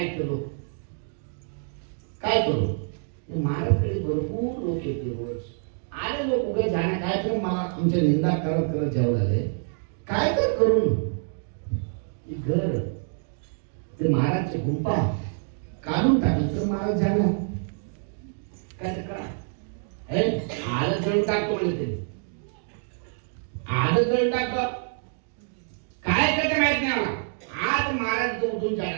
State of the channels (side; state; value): left; silent; 58 dB below the other